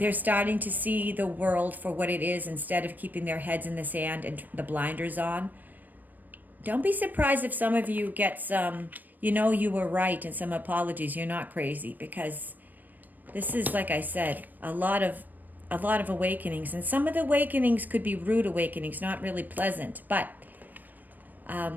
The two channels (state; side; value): late; left; 0.087 ms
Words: starting to see the world for what it is instead of keeping their heads in the sand and the blinders on. Don't be surprised if some of you get some, you were right and some apologies. You're not crazy, because this is, like I said, a lot of awakenings. And some of the awakenings could be rude awakenings, not really pleasant. But